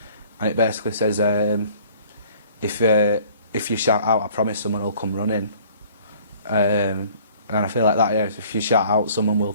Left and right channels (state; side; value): inverted; both; correlation -0.54